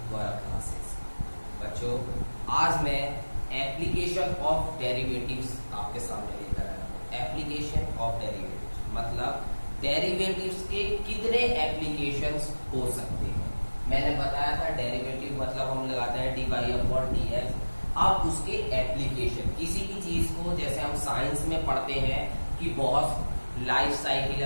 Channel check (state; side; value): inverted; both; correlation -1.00